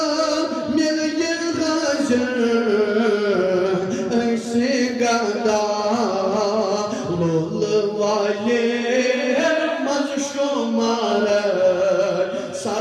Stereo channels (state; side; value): identical; both; correlation 1.00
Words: मिल ये गजर ऐसे गदा लोल वाले मजशुमार